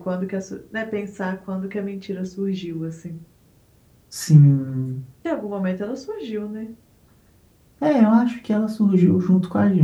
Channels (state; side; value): identical; both; correlation 1.00